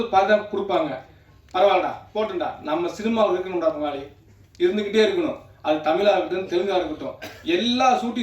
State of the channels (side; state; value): both; identical; correlation 1.00